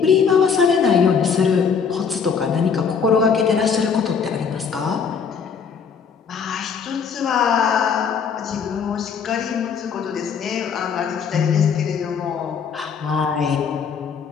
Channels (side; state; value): right; quieter; 6.3 dB